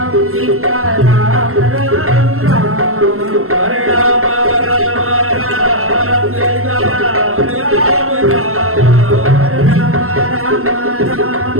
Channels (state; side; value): late; left; 0.62 ms